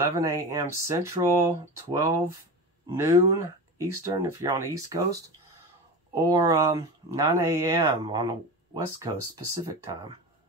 a.m. Central, 12 noon Eastern if you're on the East Coast, or 9 a.m. on the West Coast Pacific time.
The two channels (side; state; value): both; normal; correlation 0.27